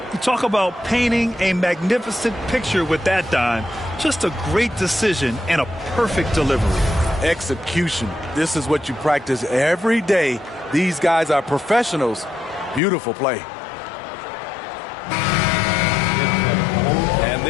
You talk about painting a magnificent picture with that dime. Just a great decision and a perfect delivery. Execution. This is what you practice every day. These guys are professionals. Beautiful play. And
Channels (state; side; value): drops out; right; at 12.8 s